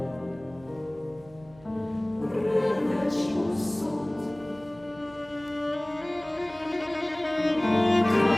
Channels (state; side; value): noise; right; hum, 24 dB below the sound